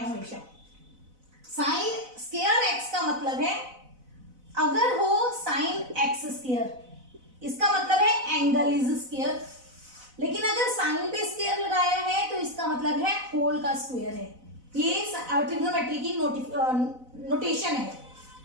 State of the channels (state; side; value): late; left; 4.0 ms